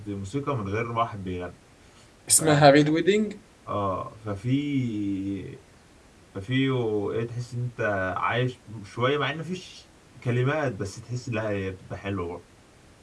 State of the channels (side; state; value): both; identical; correlation 1.00